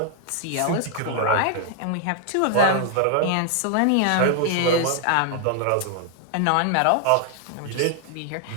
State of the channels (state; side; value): different; both; correlation 0.00